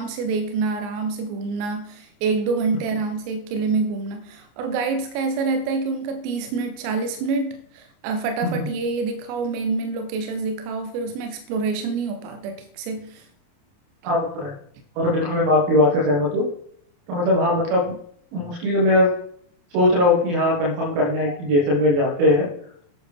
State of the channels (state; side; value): late; left; 29 ms